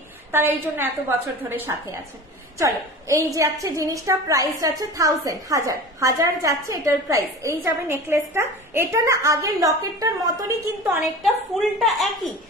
তারা এই জন্য এত বছর ধরে সাথে আছেন। চলো, এই যাচ্ছে জিনিসটা, প্রাইস যাচ্ছে 1000 যাচ্ছে এটার প্রাইস। এই যাবে নেকলেসটা, এটা না আগের লকেটটার মতনই কিন্তু অনেকটা, ফুলটা একই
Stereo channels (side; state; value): both; normal; correlation 0.36